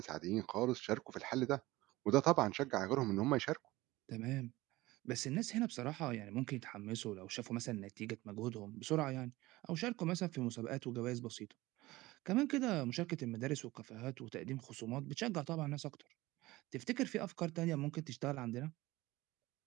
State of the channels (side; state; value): left; quieter; 19.1 dB